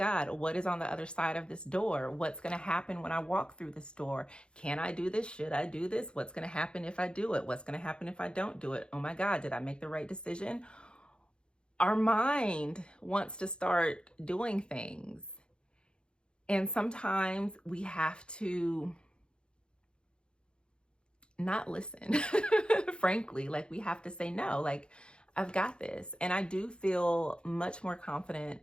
what is on the other side of this door? What's going to happen when I walk through this door? Can I do this? Should I do this? What's going to happen if I do it? What's going to happen if I don't do it? Oh my God, did I make the right decision? Our mind wants to start doing things. And sometimes we have to not listen, frankly, like we have to say no, like, I've got this. And I do feel much more confident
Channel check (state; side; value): late; right; 0.053 ms